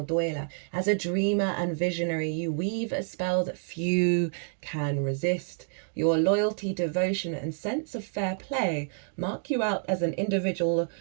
As a dreamer and visionary, you weave a spell that few can resist. Your loyalty, devotion, and sense of fair play mark you out as an individual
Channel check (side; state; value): left; silent; digital silence